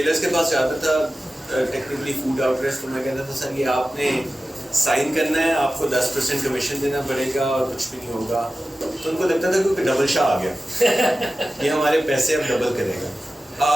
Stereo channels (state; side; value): normal; both; correlation 0.95